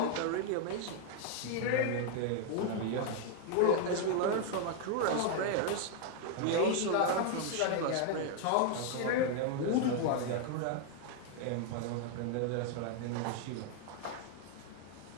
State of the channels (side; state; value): both; different; correlation 0.00